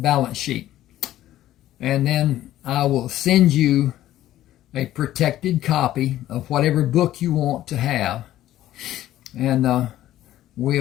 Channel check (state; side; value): quieter; right; 13.7 dB